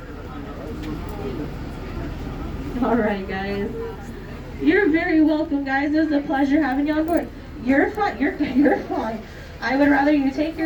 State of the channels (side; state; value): both; identical; correlation 1.00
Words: All right, guys. You're very welcome, guys. It was a pleasure having you on board. You're fine. You're fine. I would rather you take